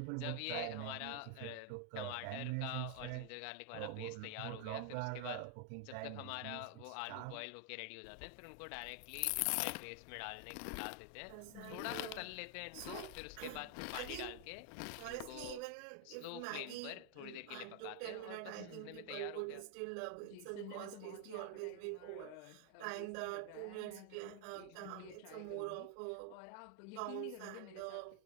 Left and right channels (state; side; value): different; both; correlation 0.00